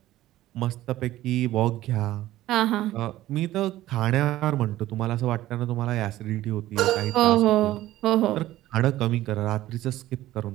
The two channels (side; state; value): left; quieter; 15.0 dB